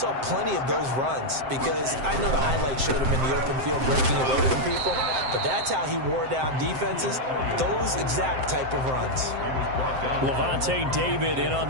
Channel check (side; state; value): left; late; 7.7 ms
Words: plenty of those runs because I know the highlights showed him in the open field breaking away from people, but that's how he wore down defenses, those exact type of runs. Levante David in on